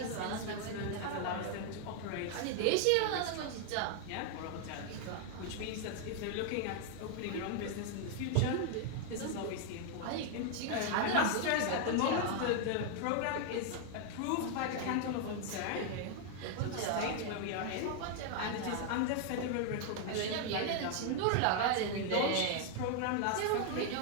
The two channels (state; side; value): different; both; correlation 0.00